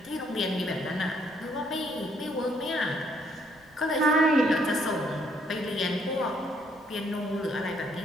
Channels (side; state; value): right; noise; rumble, 29 dB below the sound